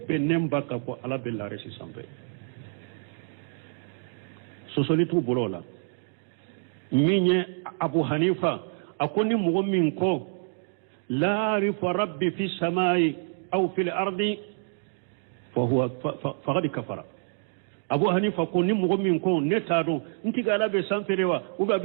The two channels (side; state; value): left; silent; 60 dB below the other